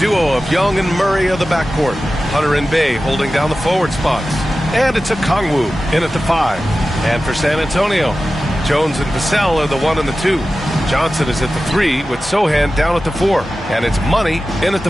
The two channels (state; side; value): normal; both; correlation 0.94